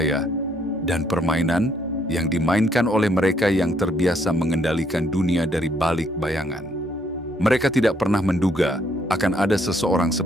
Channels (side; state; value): both; normal; correlation 0.69